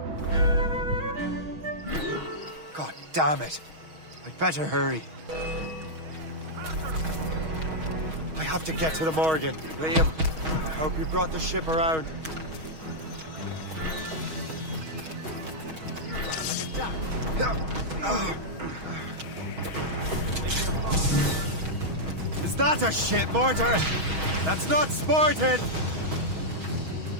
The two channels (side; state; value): left; late; 6.3 ms